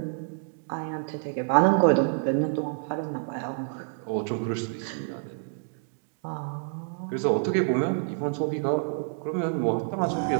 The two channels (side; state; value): left; silent; digital silence